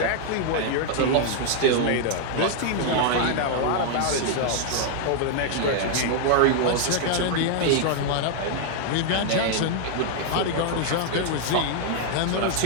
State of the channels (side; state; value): both; different; correlation 0.00